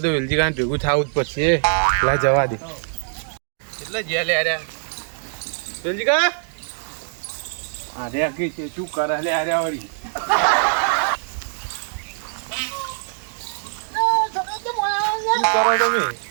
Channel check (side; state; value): left; silent; digital silence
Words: તો વેલજી કાન ભેગું થવું જ પડશે. લા જવા દે એટલે જેલે આર્યા વેલજી કા આર્યા કે છે શું કરે લે આર્યા વળી શું કરો તમે?